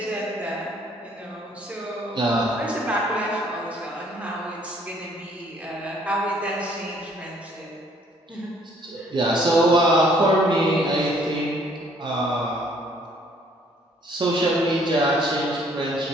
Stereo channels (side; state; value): both; normal; correlation 0.62